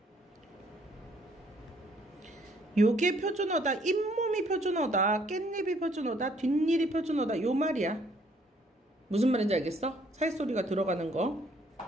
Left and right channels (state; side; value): normal; both; correlation 0.64